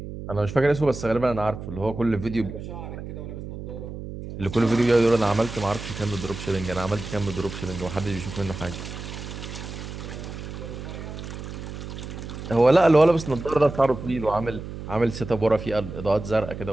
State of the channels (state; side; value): noise; right; hum, 9 dB below the sound